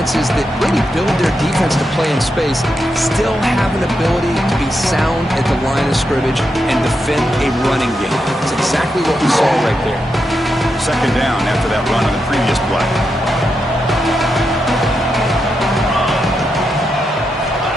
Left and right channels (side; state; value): both; normal; correlation 0.85